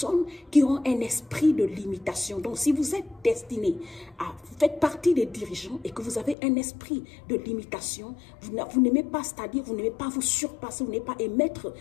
qui ont un esprit de limitation. Donc, si vous êtes destiné à faire partie des dirigeants et que vous avez un esprit de limitation, vous n'aimez pas, c'est-à-dire vous n'aimez pas vous surpasser, vous n'aimez pas émettre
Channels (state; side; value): drops out; right; at 6.4 s